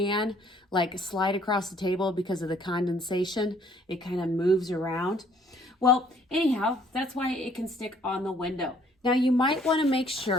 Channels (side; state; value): both; normal; correlation 0.61